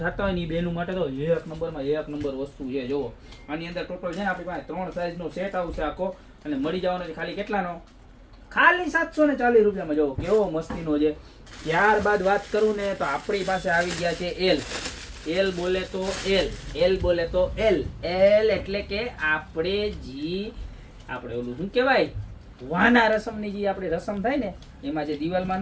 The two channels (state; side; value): identical; both; correlation 1.00